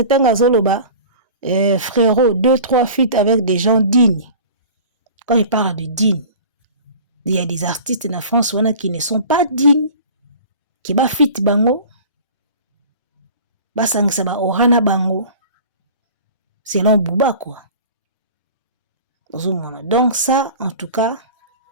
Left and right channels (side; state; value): both; inverted; correlation -0.40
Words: tanga zoloba frérot 2-3 feats avec des gens dignes. Quand il parle de dignes, il y a des artistes na France qui ne sont pas dignes. Qui ba fit bango ba sangisa ba orana bango selon Booba quoi. Donc ça en tout cas